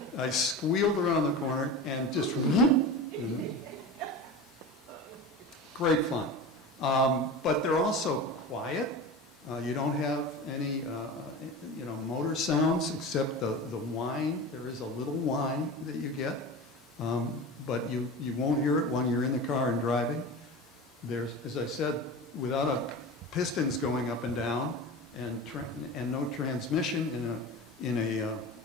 I squealed around the corner and just great fun. But they're also quiet. You don't have any motor sounds except the whine. There is a little whine that you get, but you won't hear it when you're in the car and driving. There's, as I said, without pistons going up and down and no transmission in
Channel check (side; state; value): both; normal; correlation 0.30